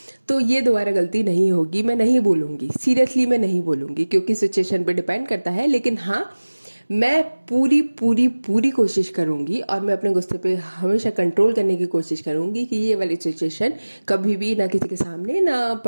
तो ये दोबारा गलती नहीं होगी, मैं नहीं बोलूँगी, सीरियसली मैं नहीं बोलूँगी क्योंकि सिचुएशन पे डिपेंड करता है। लेकिन हाँ, मैं पूरी पूरी पूरी कोशिश करूँगी और मैं अपने गुस्से पे हमेशा कंट्रोल करने की कोशिश करूँगी कि ये वाली सिचुएशन कभी भी ना किसी के सामने ना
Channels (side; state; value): both; inverted; correlation -1.00